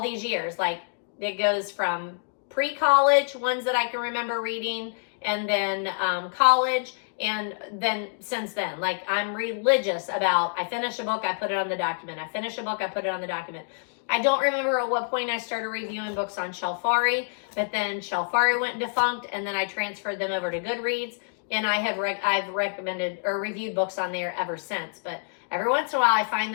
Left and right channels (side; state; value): right; silent; digital silence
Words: these years. Like, it goes from pre-college, ones that I can remember reading, and then college, and then since then. Like, I'm religious about, I finish a book, I put it on the document. I finish a book, I put it on the document. I don't remember at what point I started reviewing books on Shelfari, but then Shelfari went defunct, and then I transferred them over to Goodreads, and I've recommended or reviewed books on there ever since. But every once in a while, I find